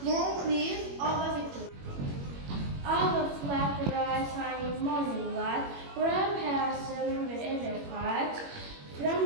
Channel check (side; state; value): left; late; 21 ms